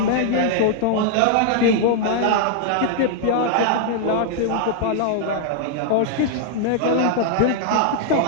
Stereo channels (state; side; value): different; both; correlation -0.01